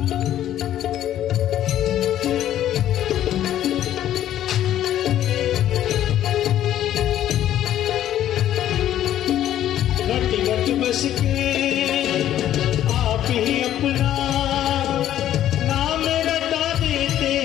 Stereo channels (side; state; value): right; quieter; 11.9 dB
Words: बस के आप ही अपना नाम रटा देते